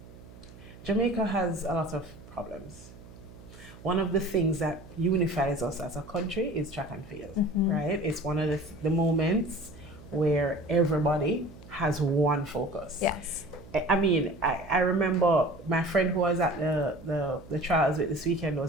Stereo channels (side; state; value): right; noise; hum, 19 dB below the sound